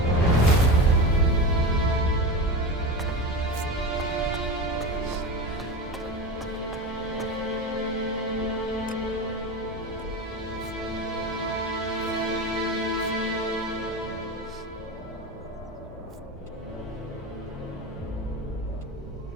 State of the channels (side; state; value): both; normal; correlation 0.25